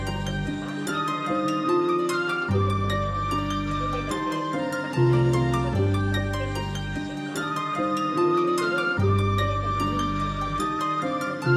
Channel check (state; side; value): identical; both; correlation 1.00